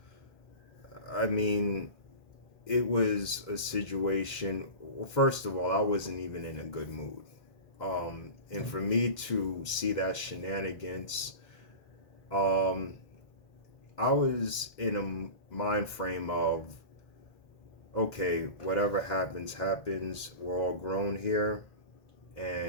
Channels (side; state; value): right; late; 2.1 ms